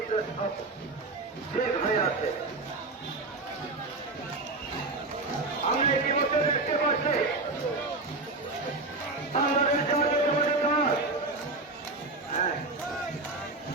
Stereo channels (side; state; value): left; quieter; 3.2 dB